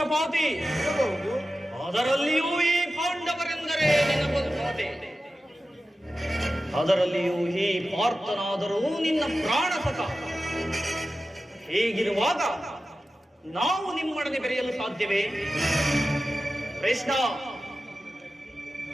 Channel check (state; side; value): normal; both; correlation 0.94